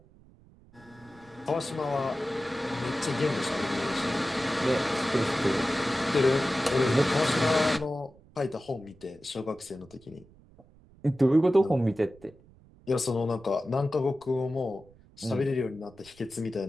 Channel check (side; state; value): right; noise; rumble, 26 dB below the sound